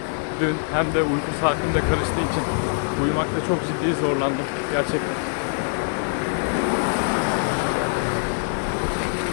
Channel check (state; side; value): silent; right; digital silence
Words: dün hem de uyku saatim de karıştığı için uyumakta çok ciddi zorlandım gerçekten.